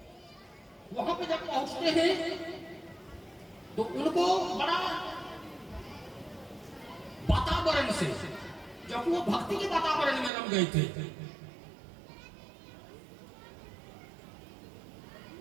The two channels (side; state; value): left; drops out; at 10.3 s